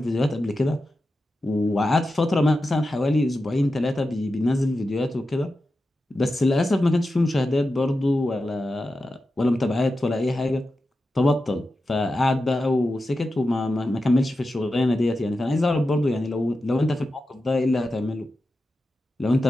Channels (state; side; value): normal; both; correlation 0.91